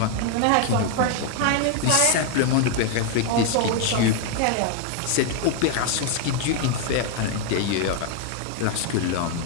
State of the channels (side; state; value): both; different; correlation 0.01